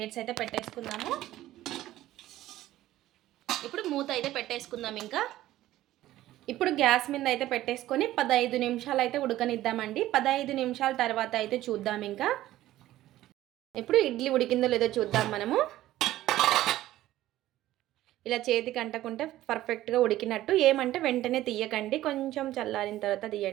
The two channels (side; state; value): left; quieter; 14.7 dB